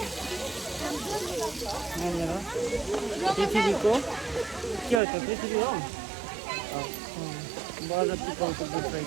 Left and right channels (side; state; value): left; drops out; at 5.0 s